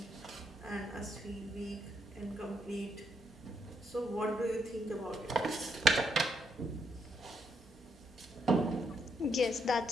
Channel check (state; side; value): normal; both; correlation 0.77